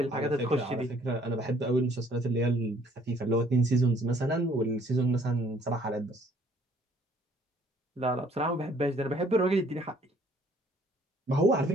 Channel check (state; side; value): normal; both; correlation 0.61